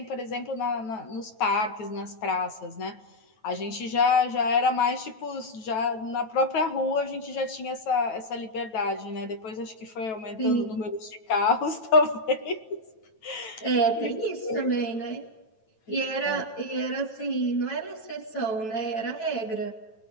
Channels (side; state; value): right; late; 9.1 ms